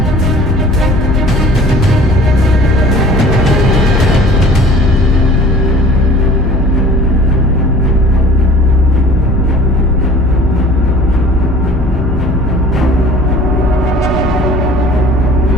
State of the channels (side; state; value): both; normal; correlation 0.47